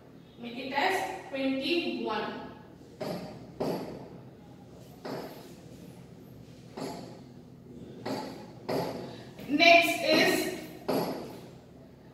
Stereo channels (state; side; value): identical; both; correlation 1.00